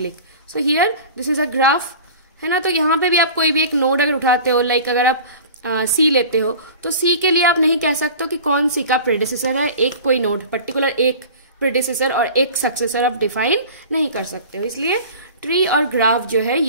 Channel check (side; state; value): both; inverted; correlation -0.39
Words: So here this is a graph, है ना। तो यहाँ पे भी आप कोई भी एक नोड अगर उठाते हो, लाइक अगर आप सी लेते हो तो सी के लिए आप नहीं कह सकते हो कि कौन सी का प्रेडिसेसर है। एक कोई नोड पर्टिकुलर एक प्रेडिसेसर और एक सक्सेसर आप डिफाइन नहीं कर सकते हो। इसलिए ट्री और ग्राफ जो है